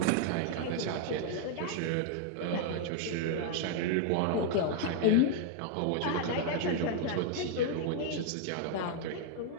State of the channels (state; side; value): different; both; correlation 0.00